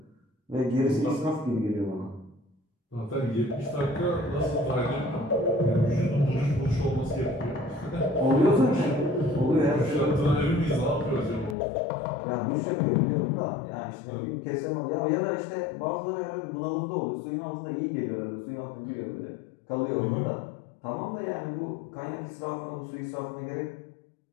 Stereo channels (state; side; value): drops out; right; at 11.6 s